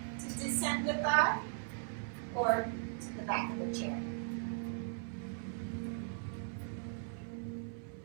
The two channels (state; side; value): silent; left; 52 dB below the other